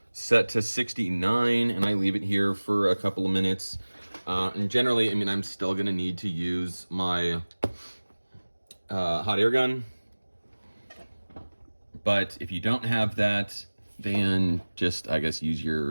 set to 69 and I leave it here for a couple of minutes. And generally, I'm still gonna need to use my hot air gun. But if you don't have that, then just, I guess, use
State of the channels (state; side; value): inverted; both; correlation -1.00